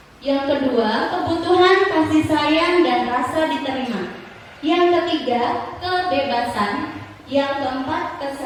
Yang kedua, kebutuhan kasih sayang dan rasa diterima. Yang ketiga, kebebasan. Yang keempat,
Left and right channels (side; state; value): both; identical; correlation 1.00